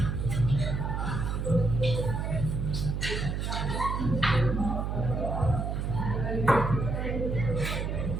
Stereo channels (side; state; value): right; noise; hum, 1 dB below the sound